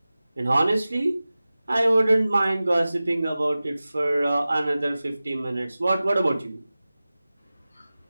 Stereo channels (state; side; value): inverted; both; correlation -0.97